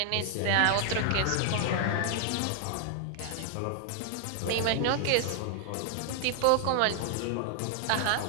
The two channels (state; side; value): different; both; correlation 0.00